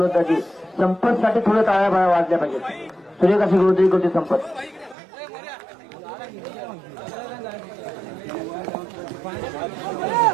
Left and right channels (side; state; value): left; drops out; at 5.0 s